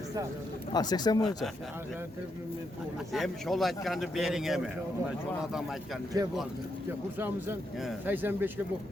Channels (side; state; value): both; normal; correlation 0.80